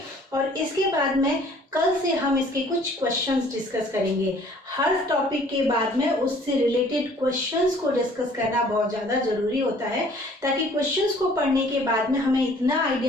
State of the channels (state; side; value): normal; both; correlation 0.55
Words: और इसके बाद में कल से हम इसके कुछ क्वेश्चंस डिस्कस करेंगे। हर टॉपिक के बाद में उससे रिलेटेड क्वेश्चंस को डिस्कस करना बहुत ज़्यादा जरूरी होता है, ताकि क्वेश्चंस को पढ़ने के बाद में हमें इतना